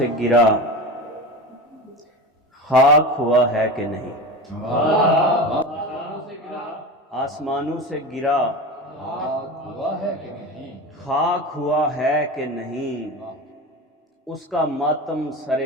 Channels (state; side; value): normal; both; correlation 0.27